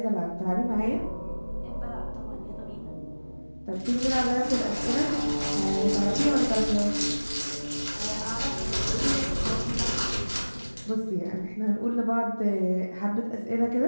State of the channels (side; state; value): both; inverted; correlation -1.00